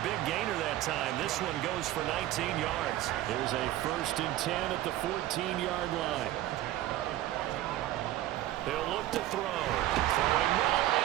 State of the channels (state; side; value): quieter; left; 14.5 dB